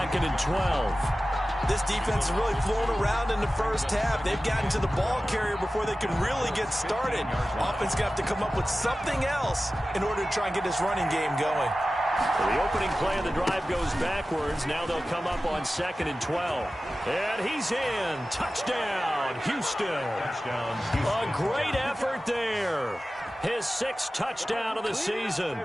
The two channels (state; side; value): normal; both; correlation 0.95